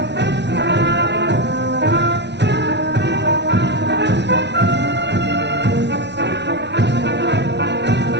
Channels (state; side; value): late; left; 0.50 ms